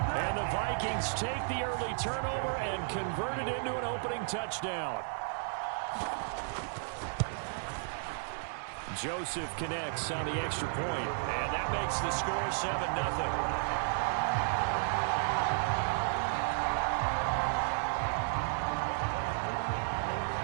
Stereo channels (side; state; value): left; silent; digital silence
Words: the Vikings take the early turnover and convert it into an opening touchdown. Joseph connects on the extra point, and that makes the score 7-0.